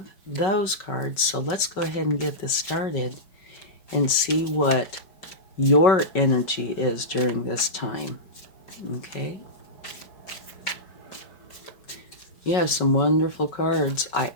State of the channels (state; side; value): late; right; 4.9 ms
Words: those cards. So let's go ahead and get this started and see what your energy is during this time. Okay? You have some wonderful cards. I